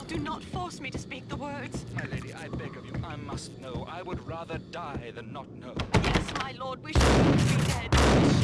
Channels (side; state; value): both; identical; correlation 1.00